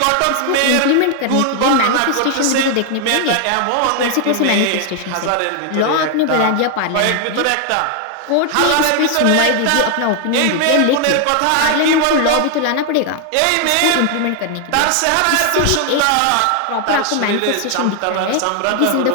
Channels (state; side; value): different; both; correlation 0.00